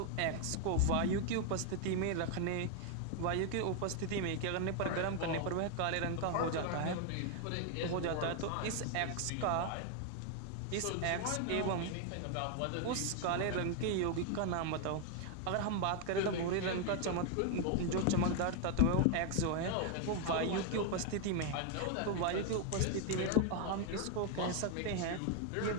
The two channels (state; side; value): different; both; correlation 0.01